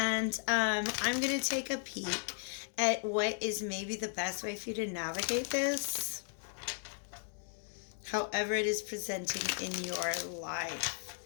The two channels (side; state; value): right; silent; 54 dB below the other